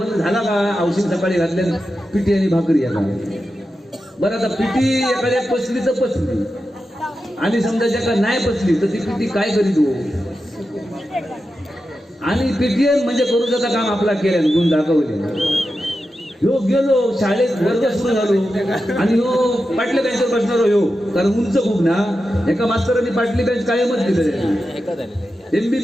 झाला का औषध सकाळी घातल्या पिठी आणि भाकरी या बरं आता पिठी एखाद्या पचली तर पचली आणि समजा ज्याका नाही पचली तर ती पिठी काय करीत हो आणि पीटीएम म्हणजे करूचा काम आपला केल्यान गुण दाखवले ह्यो गेलो शाळेत वर्ग सुरू झालो आणि ह्यो पाटल्या बेंचवर बसणार ह्यो कारण उंच खूप ना एका मास्तरांनी पाटली बेंच कायमच दिले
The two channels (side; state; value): both; normal; correlation 0.90